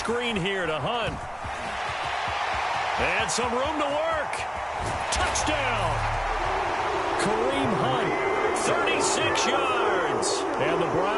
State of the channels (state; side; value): identical; both; correlation 1.00